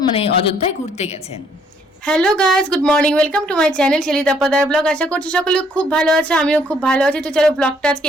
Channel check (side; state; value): both; normal; correlation 0.66